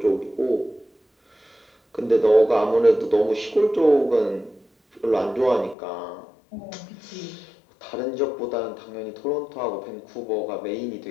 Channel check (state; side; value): drops out; right; at 5.8 s